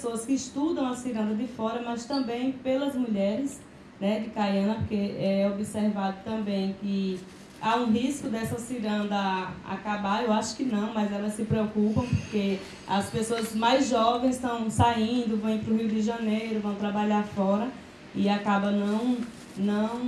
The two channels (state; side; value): identical; both; correlation 1.00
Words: que estudam a ciranda de fora, mas também pelas mulheres, né, de Caiana, porque é observado também que há um risco dessa ciranda acabar. Eu acho que não, mas elas se preocupam porque as pessoas mais jovens estão saindo, vão para o Rio de Janeiro, vão trabalhar fora e acaba não